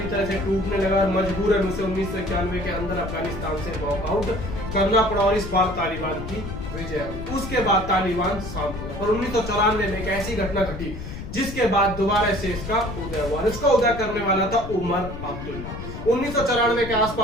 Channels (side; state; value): left; noise; rumble, 9 dB below the sound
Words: तरह से टूटने लगा और मजबूरन उसे 1991 के अंदर अफगानिस्तान से वॉकआउट करना पड़ा और इस बार तालिबान की विजय हुई। उसके बाद तालिबान शांत हुआ, पर 1994 में एक ऐसी घटना घटी जिसके बाद दोबारा से इसका उदय हुआ। इसका उदय करने वाला था उमर अब्दुल्ला। 1994 के